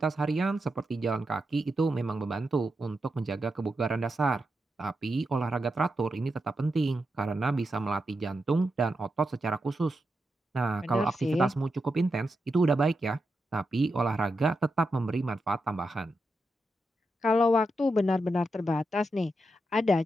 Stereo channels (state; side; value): normal; both; correlation 0.87